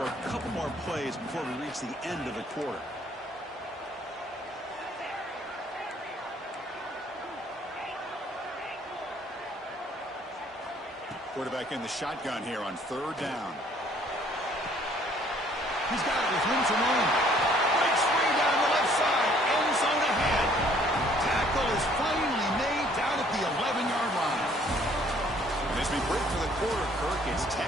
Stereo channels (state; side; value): normal; both; correlation 0.60